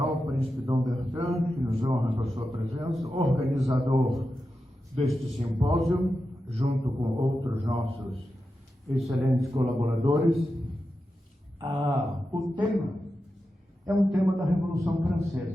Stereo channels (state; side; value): normal; both; correlation 0.90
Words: Príncipe Dom Bertrand, que nos honra com a sua presença, organizador deste simpósio, junto com outros nossos excelentes colaboradores. O tema é um tema da Revolução